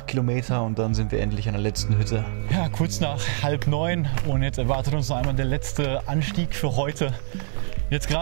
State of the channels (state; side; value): silent; left; 62 dB below the other